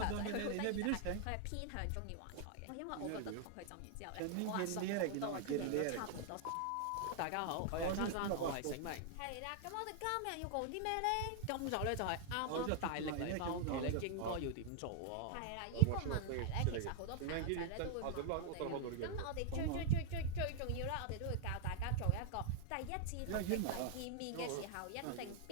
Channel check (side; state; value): both; different; correlation 0.00